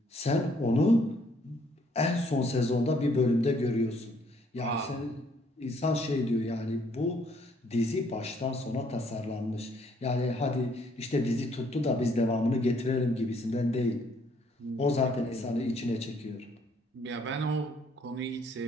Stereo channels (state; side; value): normal; both; correlation 0.66